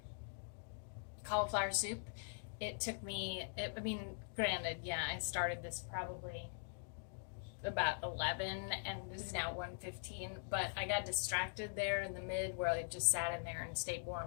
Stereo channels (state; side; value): silent; right; digital silence